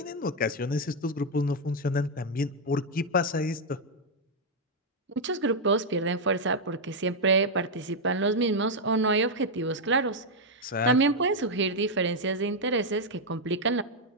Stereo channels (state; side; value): normal; both; correlation 0.00